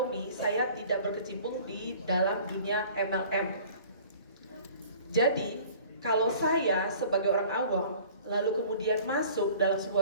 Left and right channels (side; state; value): both; inverted; correlation -0.48